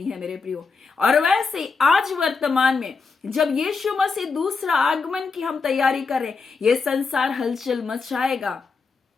है। मेरे प्रियो, और वैसे आज वर्तमान में जब यीशु मसीह दूसरा आगमन की हम तैयारी करें, ये संसार हलचल मचाएगा।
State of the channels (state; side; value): quieter; right; 4.7 dB